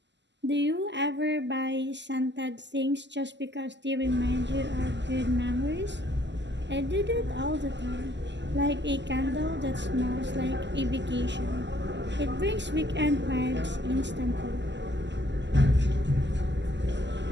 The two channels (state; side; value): late; left; 0.51 ms